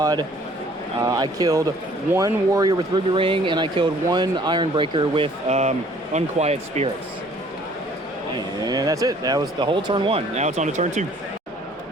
I killed 1 warrior with Ruby Ring, and I killed 1 Ironbreaker with Unquiet Spirits. And that's it. That was the whole turn 1. Now it's on to turn 2.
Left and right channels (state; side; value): normal; both; correlation 0.57